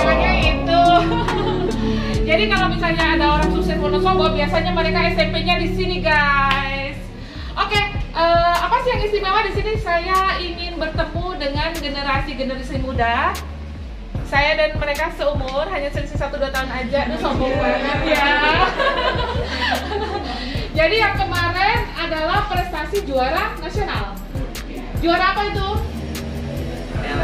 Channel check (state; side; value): identical; both; correlation 1.00